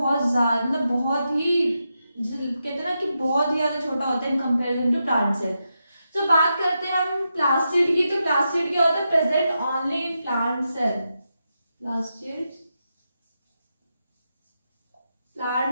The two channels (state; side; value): inverted; both; correlation -0.86